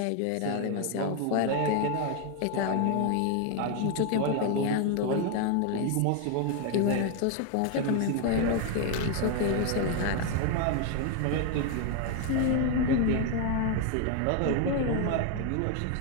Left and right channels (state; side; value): different; both; correlation 0.01